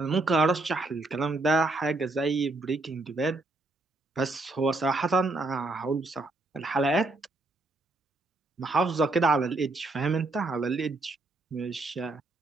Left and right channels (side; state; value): left; quieter; 3.0 dB